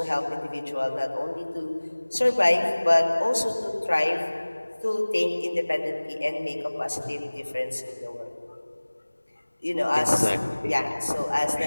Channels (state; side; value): inverted; both; correlation -1.00